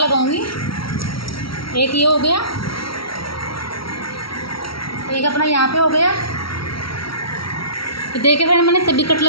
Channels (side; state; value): right; late; 0.75 ms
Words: एक ये हो गया, एक अपना यहाँ पे हो गया। तो देखिए फ्रेंड, मैंने सभी कट